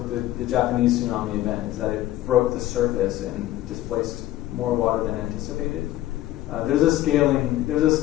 the Japanese tsunami event, is that it broke the surface and displaced more water than anticipated. There's a scaling between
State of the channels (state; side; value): quieter; right; 14.8 dB